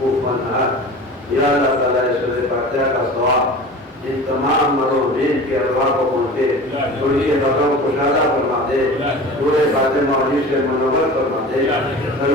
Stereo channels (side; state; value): both; normal; correlation 0.37